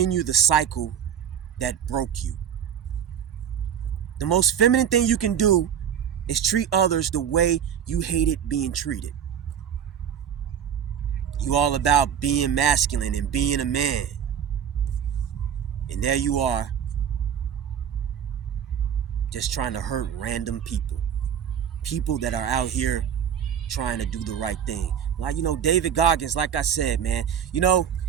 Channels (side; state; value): left; quieter; 8.7 dB